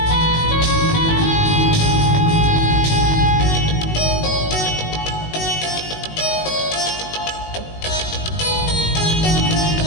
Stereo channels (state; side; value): late; right; 19 ms